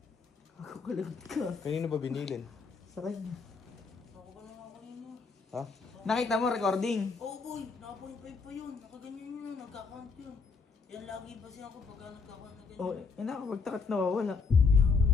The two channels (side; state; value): right; quieter; 4.7 dB